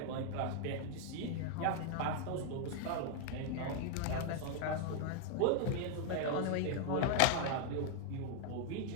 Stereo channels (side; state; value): both; different; correlation 0.00